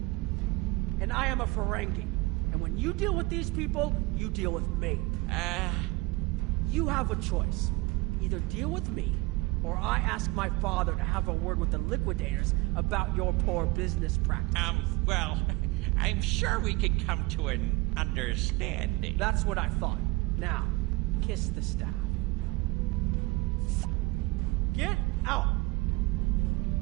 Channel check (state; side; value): quieter; left; 23.3 dB